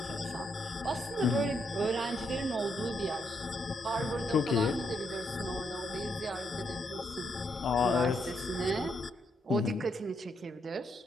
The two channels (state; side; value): normal; both; correlation 0.78